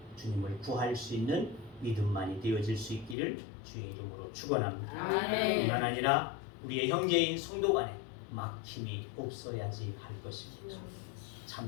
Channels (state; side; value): drops out; right; at 3.2 s